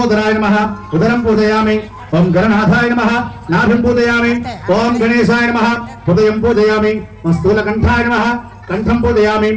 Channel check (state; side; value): identical; both; correlation 1.00